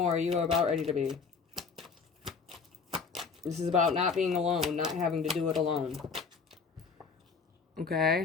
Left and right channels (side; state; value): right; quieter; 5.3 dB